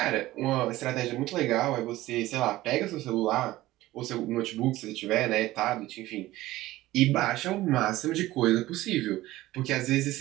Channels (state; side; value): quieter; left; 16.8 dB